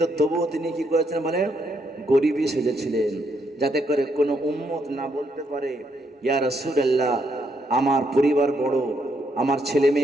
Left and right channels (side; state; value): both; normal; correlation 0.75